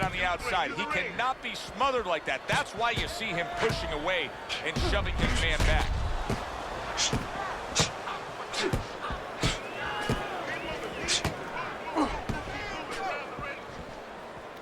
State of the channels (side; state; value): both; identical; correlation 1.00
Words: on the outside. He cannot be smothered like that. That's why you see him pushing away and shoving his man back.